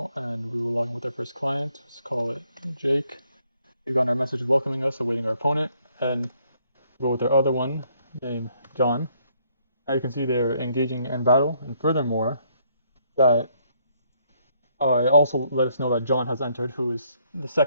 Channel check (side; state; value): both; inverted; correlation -0.69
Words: and we will log in with our first client. Let's call it Jake. We've got our message welcoming us, awaiting our opponent, and we'll go with our other one named John. Now you can see they're engaging in battle, and furthermore, that it also let us know that John has entered, who is the